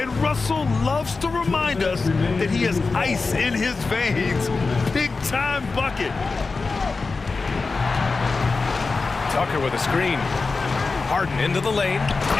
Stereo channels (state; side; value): quieter; right; 4.1 dB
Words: Russell loves to remind us that he has ice in his veins. Big-time bucket. Tucker with a screen. Harden into the lane.